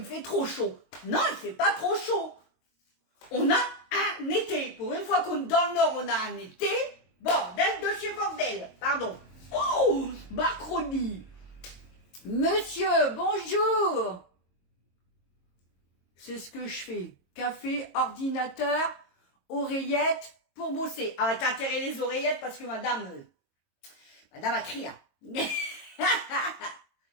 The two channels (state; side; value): late; right; 22 ms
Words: fait trop chaud. Non, il fait pas trop chaud. On a un été. Pour une fois qu'on est dans le Nord, on a un été. Bordel de chez bordel. Pardon. Oh, Macronie. Monsieur, bonjour. C'est ce que je fais. Café, ordinateur, oreillettes pour bosser. Ah, t'as intérêt les oreillettes parce que madame a crié.